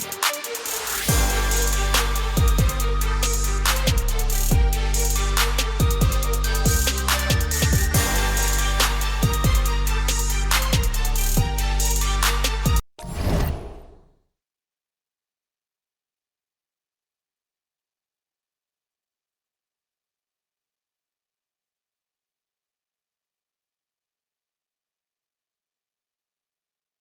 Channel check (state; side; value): identical; both; correlation 1.00